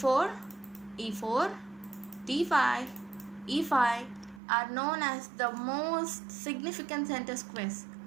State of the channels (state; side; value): drops out; left; at 4.4 s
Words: e4, d5, e5 are known as the most significant center squares.